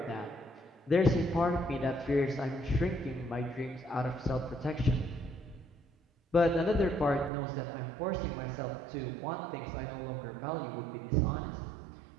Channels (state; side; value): drops out; left; at 7.3 s